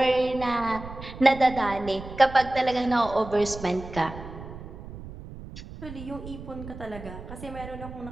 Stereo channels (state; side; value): noise; right; rumble, 13 dB below the sound